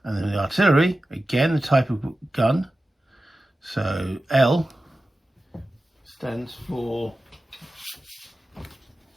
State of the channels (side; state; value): both; normal; correlation 0.94